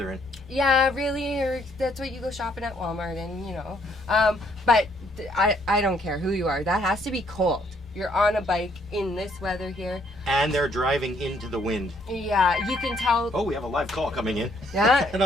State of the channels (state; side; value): normal; both; correlation 0.67